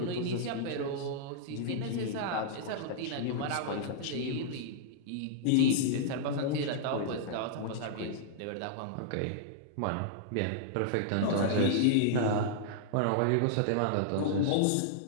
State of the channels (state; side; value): different; both; correlation -0.01